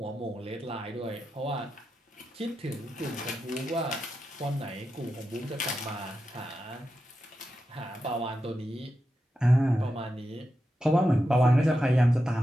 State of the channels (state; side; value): normal; both; correlation 0.89